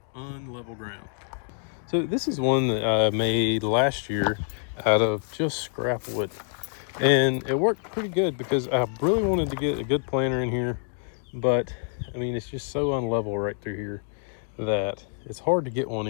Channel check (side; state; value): right; silent; 61 dB below the other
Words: unlevel ground. So this is one that I made last year out of just scrap wood. And it worked pretty good because I really wanted to get a good planter in here. But I mean, it's just so unlevel right through here that it's hard to get one